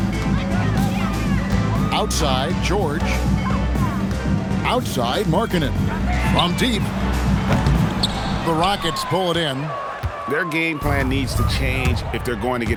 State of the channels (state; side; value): identical; both; correlation 1.00